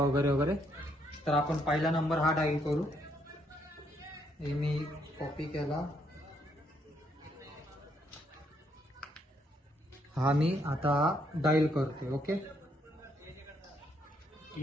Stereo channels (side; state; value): both; normal; correlation 0.73